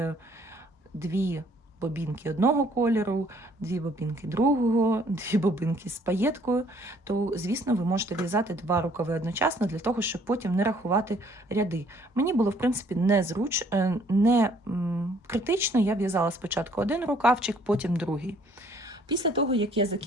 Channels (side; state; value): both; normal; correlation 0.61